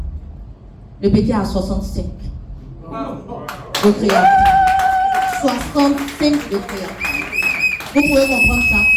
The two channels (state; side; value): identical; both; correlation 1.00